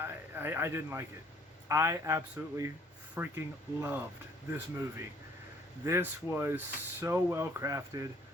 didn't like it. I absolutely freaking loved this movie. This was so well crafted.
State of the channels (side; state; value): both; normal; correlation 0.59